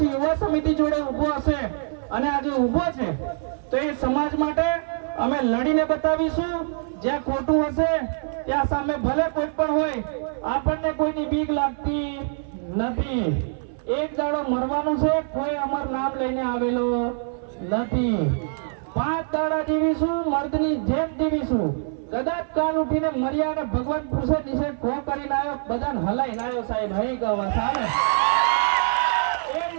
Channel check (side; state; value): left; silent; 59 dB below the other